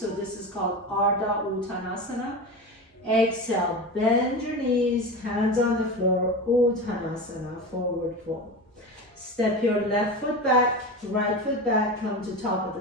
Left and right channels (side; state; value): both; normal; correlation 0.26